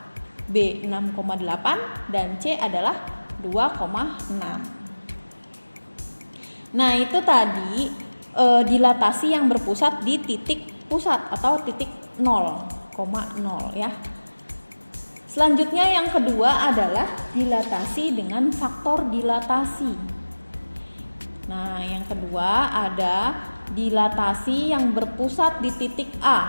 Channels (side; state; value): both; inverted; correlation -1.00